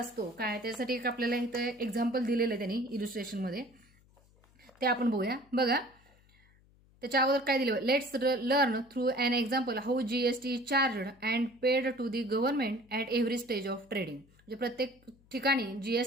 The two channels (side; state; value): left; noise; hum, 30 dB below the sound